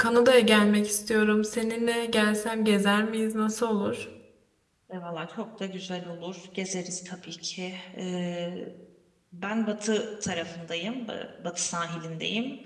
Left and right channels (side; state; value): both; identical; correlation 1.00